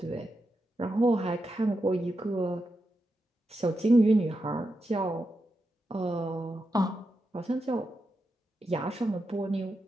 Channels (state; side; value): normal; both; correlation 0.87